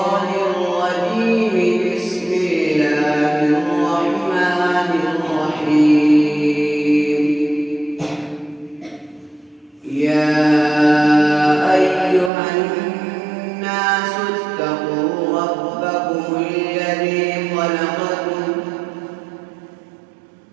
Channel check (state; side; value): drops out; left; at 12.3 s